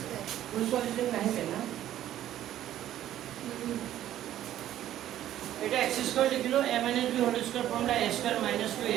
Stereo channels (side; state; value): left; quieter; 12.3 dB